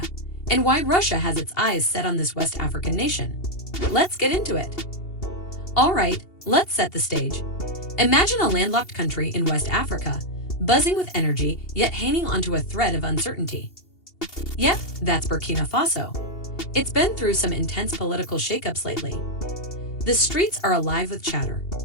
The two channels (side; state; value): right; late; 2.8 ms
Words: and why Russia has its eyes set on this West African nation. Let's get into it. All right, let's set the stage. Imagine a landlocked country in West Africa, buzzing with energy yet hanging onto a thread of uncertainty. Yep, that's Burkina Faso. It's been through some intense political shakeups lately. The streets are alive with chatter,